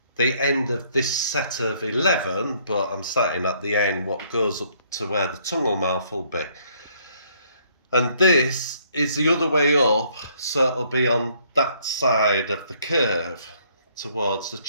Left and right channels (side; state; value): both; inverted; correlation -0.65